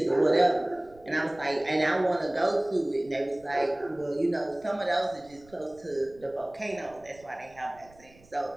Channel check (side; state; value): right; noise; rumble, 26 dB below the sound